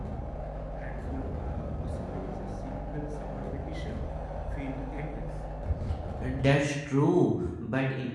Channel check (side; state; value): both; identical; correlation 1.00